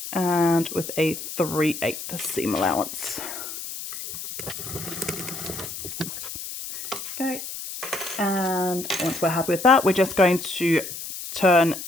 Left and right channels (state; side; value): noise; left; hiss, 8 dB below the sound